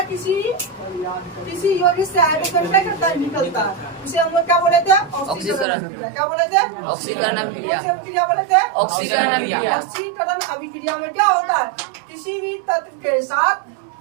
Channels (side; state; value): left; drops out; at 5.7 s